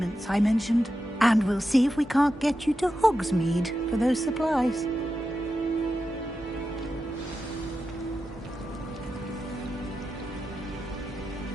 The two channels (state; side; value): normal; both; correlation 0.90